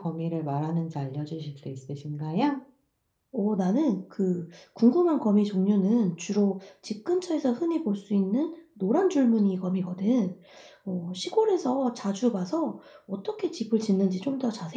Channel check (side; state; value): both; identical; correlation 1.00